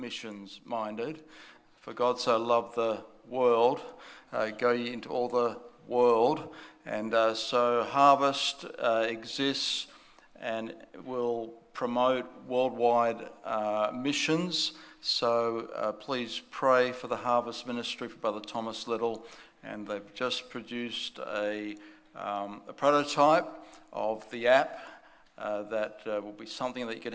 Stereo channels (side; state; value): both; identical; correlation 1.00